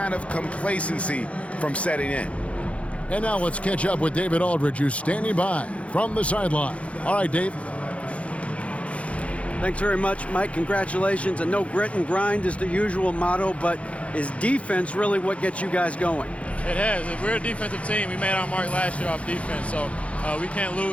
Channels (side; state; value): right; late; 0.063 ms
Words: of complacency from setting in. And now let's catch up with David Aldridge, who's standing by from the sideline. All right, Dave. Thanks very much, Mike. Congratulations. I know grit and grind is the usual motto, but is defense really what gets you guys going? It has. We're a defensive team. We made our mark last year off defense, so we can't